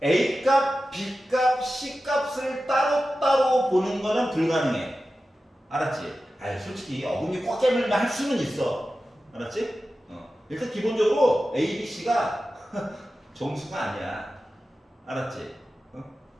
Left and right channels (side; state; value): both; normal; correlation 0.93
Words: a 값, b 값, c 값을 따로따로 보는 거는 불가능해. 알았지? 아니 솔직히 어금니 꽉 깨물면 할 수는 있어. 알았지? 일단 기본적으로 a, b, c가 정수가 아니야. 알았지?